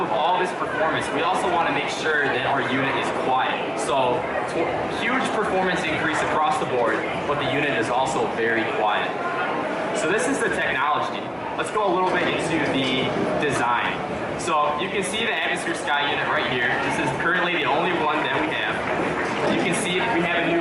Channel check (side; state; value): both; identical; correlation 1.00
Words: all this performance, we also want to make sure that our unit is quiet. So huge performance increase across the board, but the unit is also very quiet. So this is the technology. Let's go a little bit into the design. So you can see the Atmosphere Sky unit right here. This is currently the only one that we have. You can see we have a